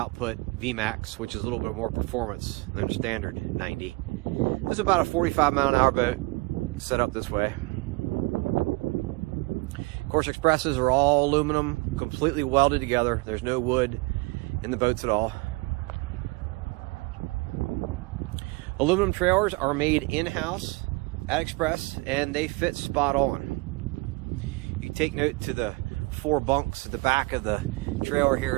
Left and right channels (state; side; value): quieter; left; 25.7 dB